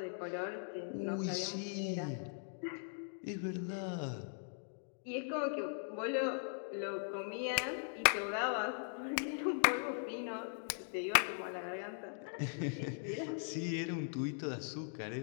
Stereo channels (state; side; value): silent; right; digital silence